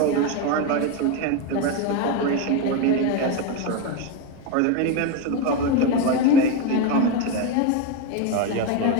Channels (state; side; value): different; both; correlation 0.03